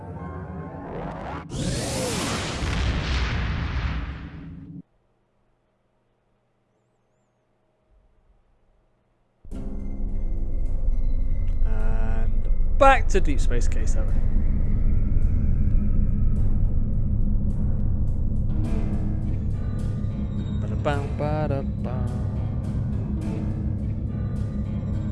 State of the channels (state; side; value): identical; both; correlation 1.00